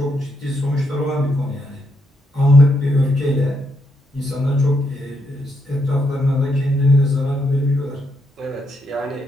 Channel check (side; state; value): both; normal; correlation 0.78